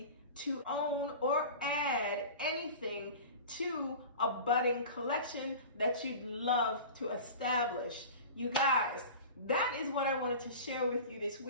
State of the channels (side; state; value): both; inverted; correlation -0.35